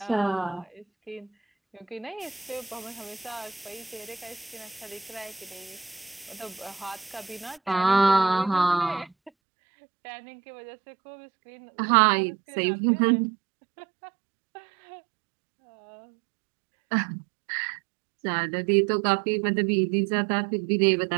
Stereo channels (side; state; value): left; drops out; at 9.3 s